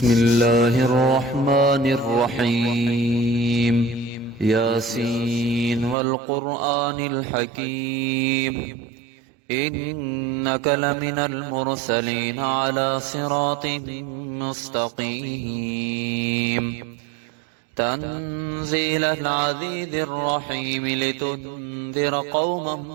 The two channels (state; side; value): drops out; left; at 6.0 s